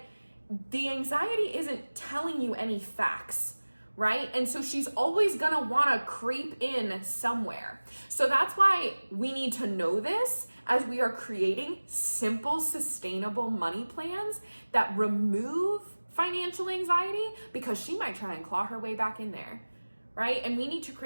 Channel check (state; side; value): inverted; both; correlation -1.00